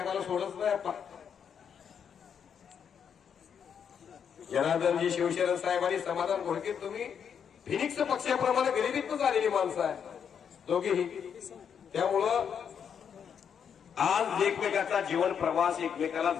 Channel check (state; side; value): quieter; right; 7.6 dB